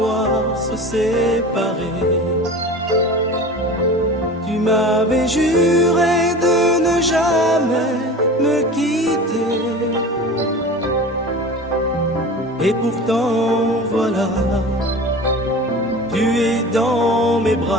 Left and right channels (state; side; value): normal; both; correlation 0.36